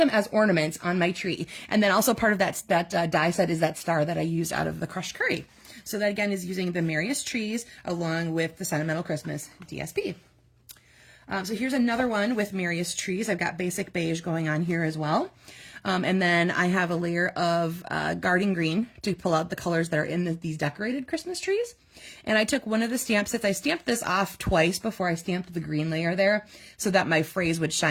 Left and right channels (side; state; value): both; identical; correlation 1.00